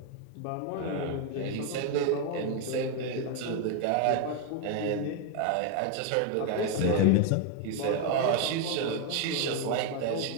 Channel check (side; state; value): both; different; correlation 0.01